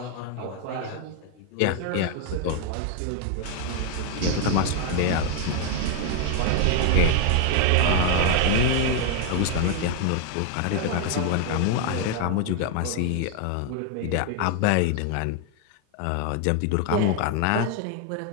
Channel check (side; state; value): both; different; correlation 0.00